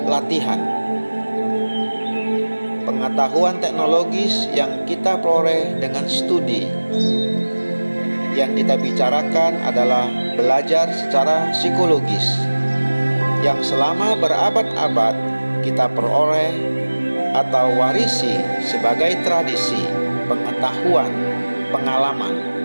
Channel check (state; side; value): inverted; both; correlation -1.00